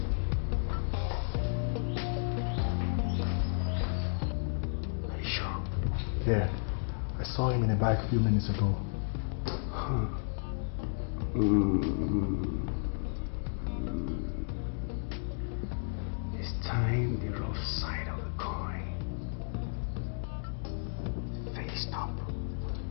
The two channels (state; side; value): silent; right; digital silence